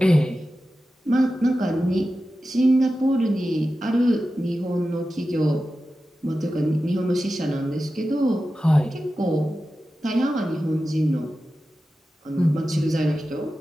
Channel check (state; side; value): normal; both; correlation 0.93